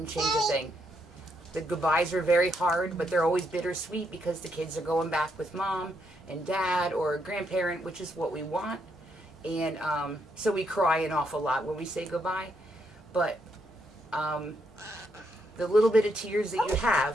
change a thing. The goodbyes are very hard, but they're always bittersweet because the kids are going back with mom and dad or a grandparent, which is what we want. And so we cry an awful lot when we say goodbye. But the little bit of tears that you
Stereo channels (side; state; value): left; noise; hum, 29 dB below the sound